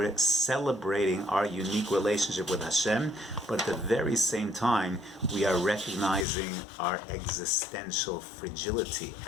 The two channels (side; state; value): right; drops out; at 6.2 s